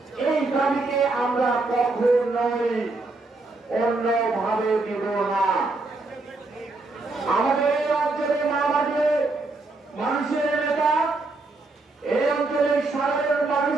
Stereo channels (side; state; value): left; quieter; 3.3 dB